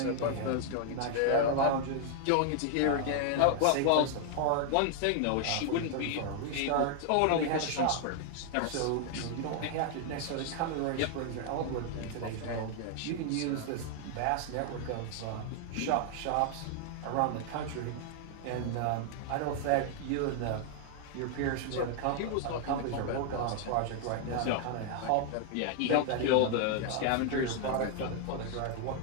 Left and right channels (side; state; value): both; different; correlation 0.00